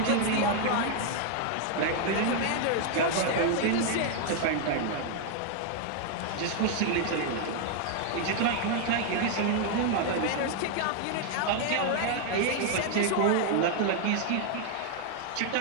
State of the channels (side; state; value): both; different; correlation 0.00